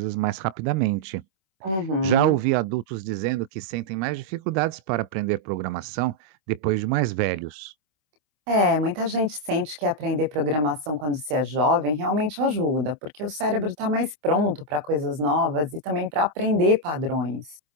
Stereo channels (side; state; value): left; late; 26 ms